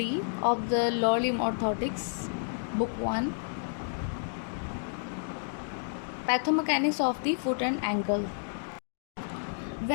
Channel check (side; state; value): right; silent; digital silence